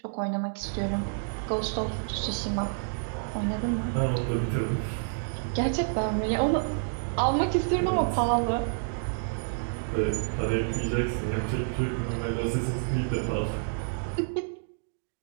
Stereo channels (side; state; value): left; silent; digital silence